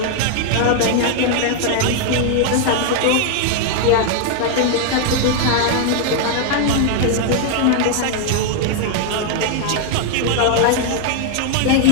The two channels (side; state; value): both; different; correlation 0.00